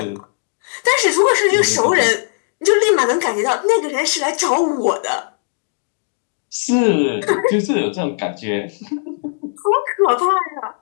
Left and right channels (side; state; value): right; silent; digital silence